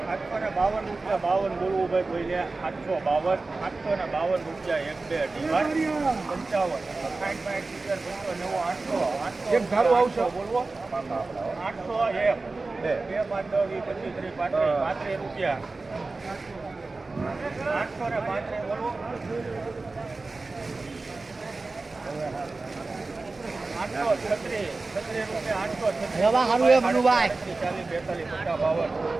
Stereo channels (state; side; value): quieter; left; 3.6 dB